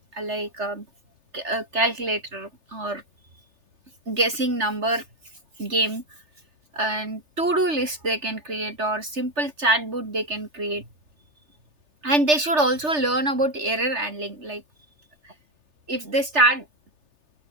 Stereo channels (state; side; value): late; left; 3.3 ms